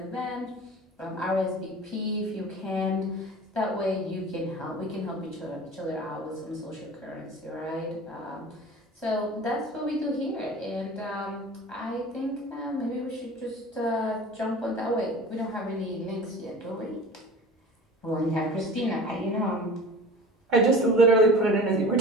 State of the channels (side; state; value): both; normal; correlation 0.39